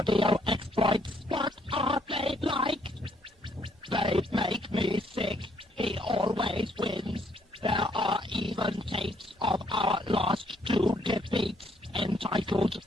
exploits. What are they like? They make me sick. He always wins. There are even tapes of our last two defeats, entitled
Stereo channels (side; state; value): both; normal; correlation 0.69